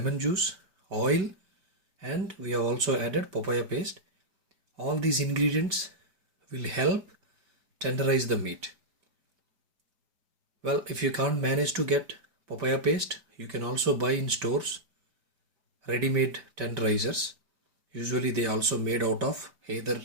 juice, oil, and we have also added papaya paste. All these ingredients will help tenderize the meat. Well, if you can't manage to get papaya paste, you can also buy in stores ready-made tenderizers. Usually they also made out of either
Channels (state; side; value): late; left; 5.2 ms